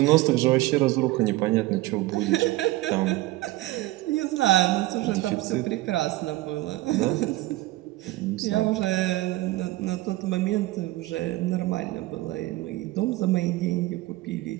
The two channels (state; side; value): quieter; left; 18.2 dB